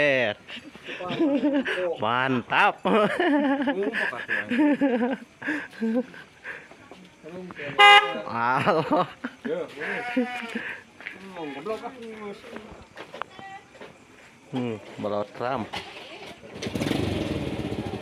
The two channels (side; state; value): both; identical; correlation 1.00